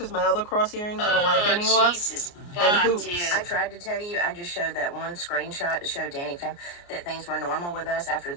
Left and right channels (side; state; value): right; late; 29 ms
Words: my other cross earrings I don't like anymore. Jesus, And hoops. dude. I tried to tell you, I just showed that one screenshot to show Danny Fam that things were normal with us after